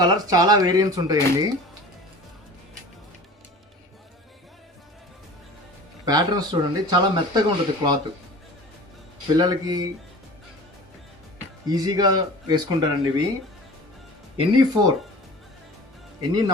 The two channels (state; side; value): normal; both; correlation 0.40